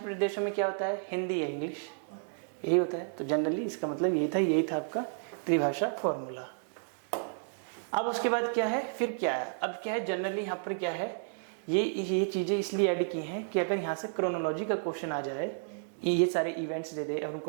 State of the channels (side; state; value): left; silent; digital silence